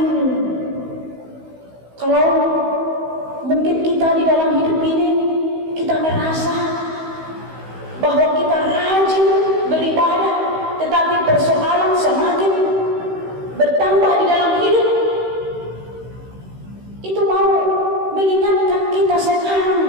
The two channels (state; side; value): late; left; 16 ms